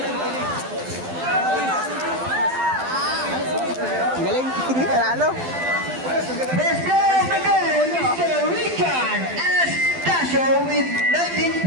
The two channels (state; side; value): late; left; 12 ms